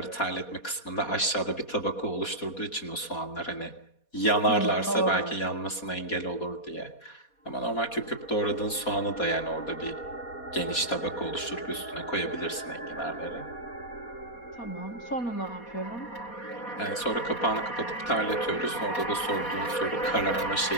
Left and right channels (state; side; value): late; right; 4.2 ms